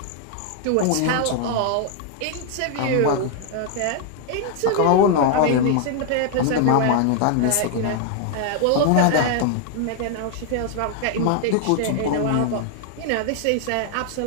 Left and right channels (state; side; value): different; both; correlation 0.00